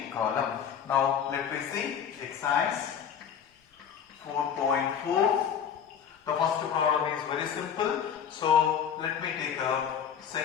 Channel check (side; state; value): right; quieter; 8.1 dB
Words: column. Now let me see exercise 4.4. The first problem is very simple. So let me take up